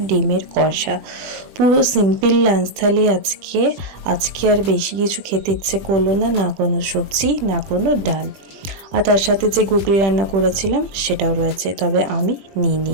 ডিমের কষা। পুরো সিম্পল লাঞ্চ থালি আজকে আর বেশি কিছু খেতে ইচ্ছে করলো না, না কোনো সবজি না কোনো ডাল। আর তার সাথে যে গুগলি রান্না করেছিলাম সেটাও রয়েছে, তবে আমি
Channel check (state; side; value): late; left; 21 ms